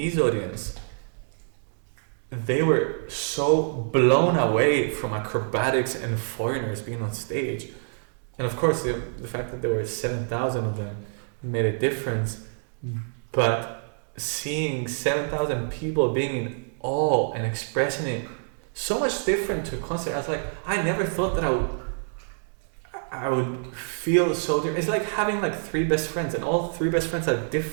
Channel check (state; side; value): silent; left; digital silence